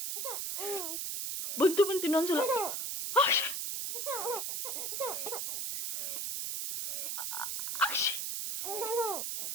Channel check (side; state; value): right; noise; hiss, 2 dB below the sound